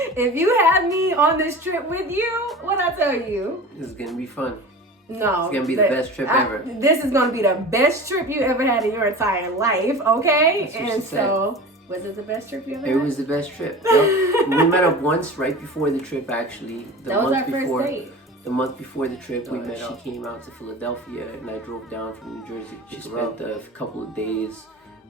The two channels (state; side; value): normal; both; correlation 0.35